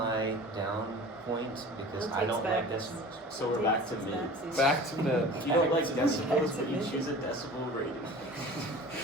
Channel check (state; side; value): normal; both; correlation 0.40